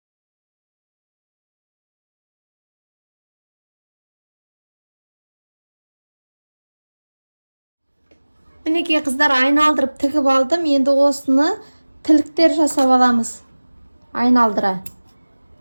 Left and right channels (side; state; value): both; inverted; correlation -1.00